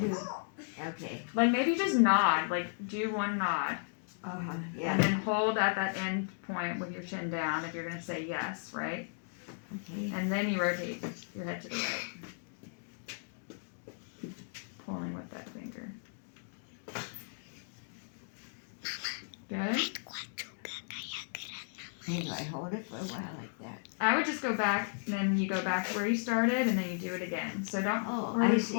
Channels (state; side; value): silent; right; digital silence